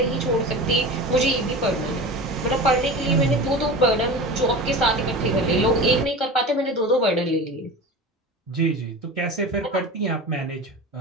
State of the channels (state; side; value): normal; both; correlation 0.32